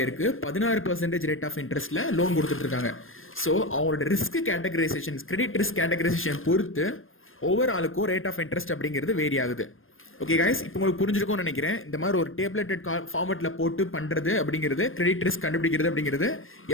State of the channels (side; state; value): right; late; 0.59 ms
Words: 16% ரேட் ஆஃப் இன்ட்ரெஸ்ட்ல லோன் கொடுத்துட்டு இருக்காங்க. ஸோ அவங்களோட risk categorisation, credit risk categorisation பொறுத்து ஒவ்வொரு ஆளுக்கும் ரேட் ஆஃப் இன்ட்ரெஸ்ட் அப்படிங்கிறது வேரி ஆகுது. ஓகே கைஸ், இப்போ உங்களுக்கு புரிஞ்சிருக்கும்னு நினைக்கிறேன். இந்த மாதிரி ஒரு டேப்லெட்டட் ஃபார்மேட்ல போட்டு பண்றது அப்படிங்கிறது, கிரெடிட் ரிஸ்க் கண்டுபிடிக்கிறது அப்படிங்கிறது